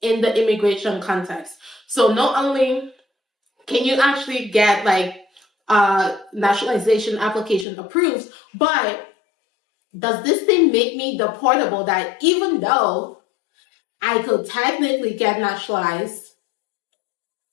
in the immigration context. So not only can you actually get naturalization application approved, but does this thing make me deportable that even though I could technically get naturalized,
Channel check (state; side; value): drops out; right; at 7.7 s